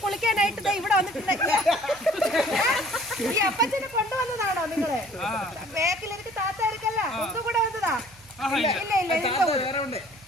കുളിക്കാനായിട്ട് ഇവിടെ വന്നിട്ടുണ്ട്. ഈ അപ്പച്ചനെ കൊണ്ടുവന്നതാണോ നിങ്ങള്? ബാക്കിൽ എനിക്ക് താത്താർക്കല്ല, ഒന്നും കൂടെ വന്നതാ? ഇല്ല ഇല്ല ഇല്ല.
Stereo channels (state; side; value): noise; right; hum, 25 dB below the sound